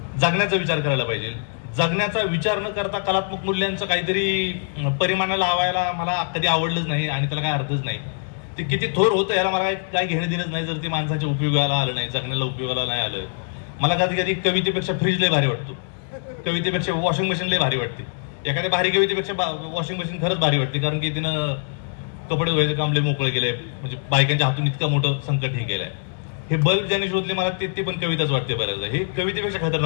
जगण्याचा विचार करायला पाहिजे. जगण्याचा विचार न करता कलात्मक मूल्यांचं काहीतरी परिमाणाला लावायला मला कधी आवडलंच नाही आणि त्याला काय अर्थच नाही. ते किती थोर होतं याला मला काय घेणं देणंच नाही जर ते माणसाच्या उपयोगाला आलं नाही, जगण्याला उपयोगाला नाही आलं. मला कधी कधी कवितेपेक्षा फ्रीज लय भारी वाटतो, कवितेपेक्षा वॉशिंग मशीन लय भारी वाटते. एखाद्या भारी कवितेपेक्षा वॉशिंग मशीन खरंच भारी वाटते, कारण की तिनं कपडे धुवायचं काम लय मोकळं केलंय. म्हणजे बायकांच्या हातून इतकं मोठं संकट हे केलंय. हे बल्ब ज्याने शोधले मला ते पण कविताच वाटते बऱ्याचदा. हे कवितेपेक्षा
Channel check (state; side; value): silent; right; digital silence